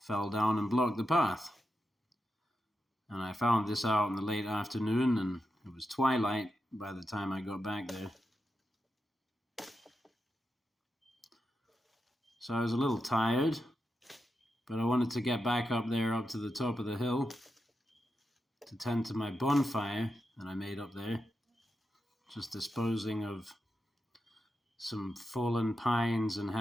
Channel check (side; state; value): both; normal; correlation 0.88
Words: down and blocked the path. And I found this out in the late afternoon, and it was twilight by the time I got back there. So I was a little tired, but I wanted to get back up there, up to the top of the hill, to tend to my bonfire that I made up there, just disposing of some fallen pines and